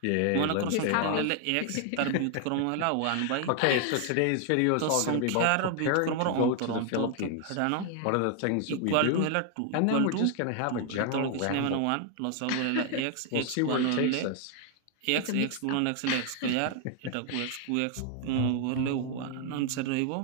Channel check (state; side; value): different; both; correlation 0.00